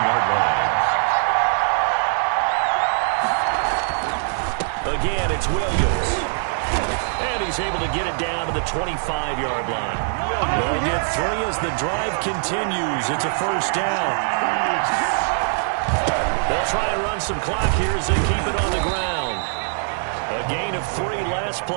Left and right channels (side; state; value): left; silent; 64 dB below the other